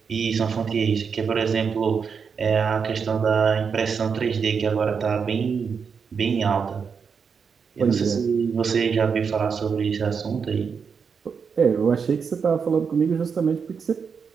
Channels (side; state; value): left; quieter; 6.1 dB